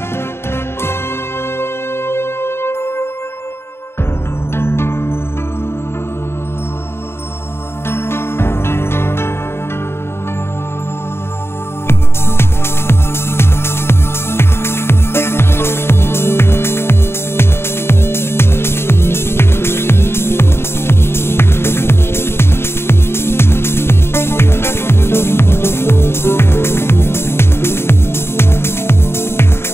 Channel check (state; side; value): late; right; 0.12 ms